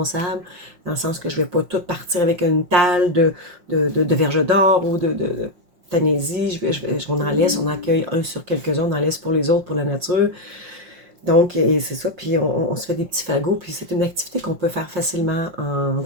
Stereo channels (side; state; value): left; late; 5.6 ms